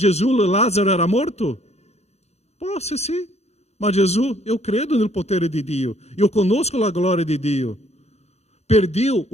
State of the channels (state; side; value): late; right; 0.31 ms